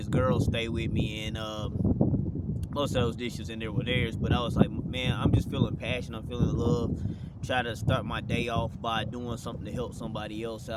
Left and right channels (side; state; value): both; identical; correlation 1.00